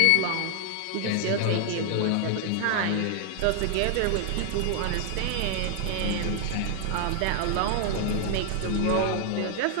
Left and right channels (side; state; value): both; different; correlation 0.00